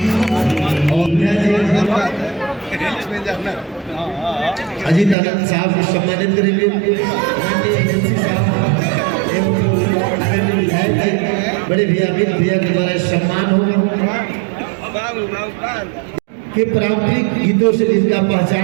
अजीत आनंद साहब को सम्मानित करेंगे। बड़े भैया अमित भैया के द्वारा सम्मान होगा कि पारंपरिक गीतों से जिसका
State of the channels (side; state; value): left; drops out; at 5.2 s